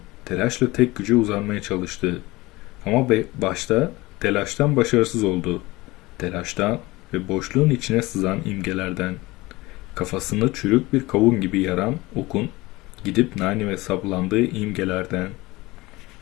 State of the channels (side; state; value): right; quieter; 20.9 dB